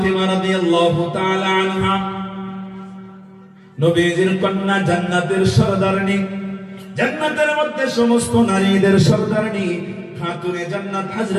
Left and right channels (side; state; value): both; identical; correlation 1.00